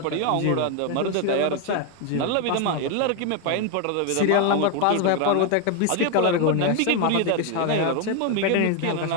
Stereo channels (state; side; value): different; both; correlation 0.01